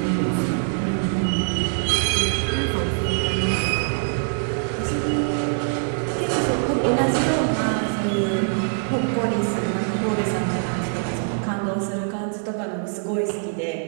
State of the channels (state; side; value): silent; left; digital silence